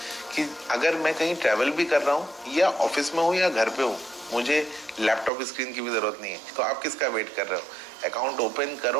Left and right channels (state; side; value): drops out; left; at 5.3 s